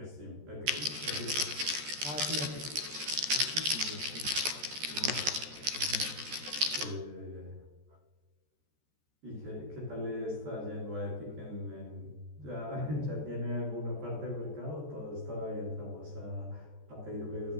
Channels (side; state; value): left; late; 14 ms